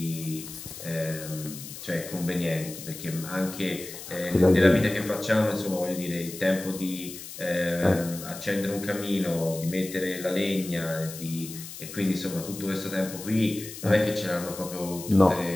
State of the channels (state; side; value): noise; left; hiss, 12 dB below the sound